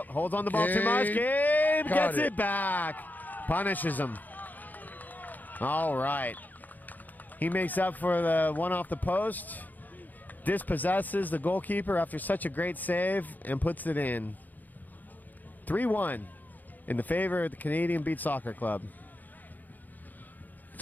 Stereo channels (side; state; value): right; late; 0.084 ms